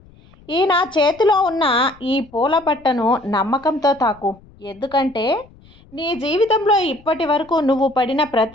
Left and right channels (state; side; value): noise; left; rumble, 26 dB below the sound